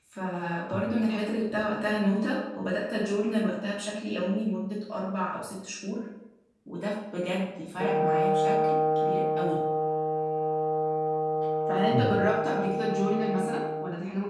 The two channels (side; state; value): both; identical; correlation 1.00